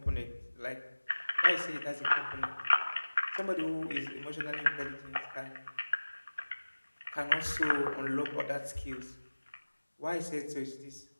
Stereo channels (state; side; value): inverted; both; correlation -1.00